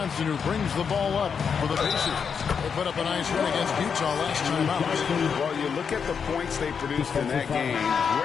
who brings the ball up for the Pacers. They put up a nice win against Utah last time out. Well, you look at the points they produced in that game.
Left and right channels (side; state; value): right; quieter; 6.5 dB